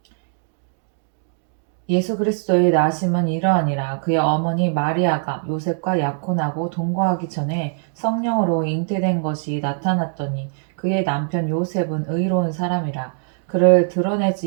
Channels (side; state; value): left; silent; 63 dB below the other